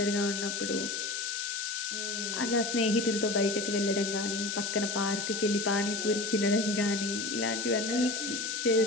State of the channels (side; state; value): left; noise; hiss, 4 dB below the sound